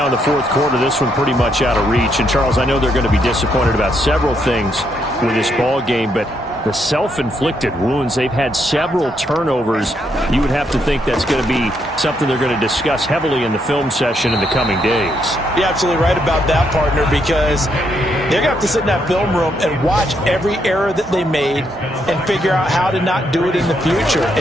in the fourth quarter, this one pretty much out of reach. And, Charles, I know they're going to be disappointed about several things with this ball game, but the self-inflicted wounds, they've had several turnovers. You would have to think that's going to be something they're going to discuss heavily in the film session in the coming days. You're absolutely right about that, partner, because they're going to have to sit in that film room and watch every error that they made and figure out how to not do it in the future.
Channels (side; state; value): both; normal; correlation 0.76